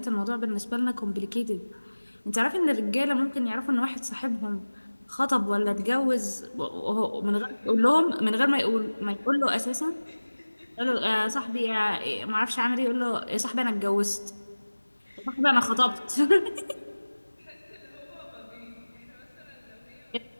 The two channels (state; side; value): inverted; both; correlation -1.00